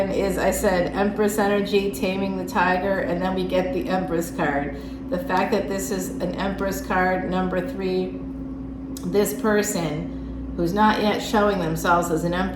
is, I said, Empress energy, taming the tiger, and then we get the Empress card. The fact that this is an Empress card, number 3, this person who's not yet showing themselves as an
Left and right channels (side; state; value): both; identical; correlation 1.00